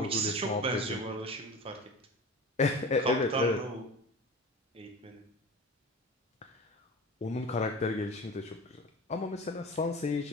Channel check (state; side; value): normal; both; correlation 0.33